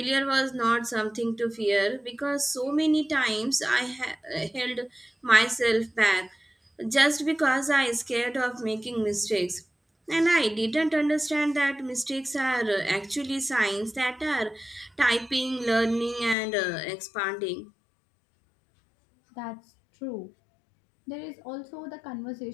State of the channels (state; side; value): drops out; right; at 16.4 s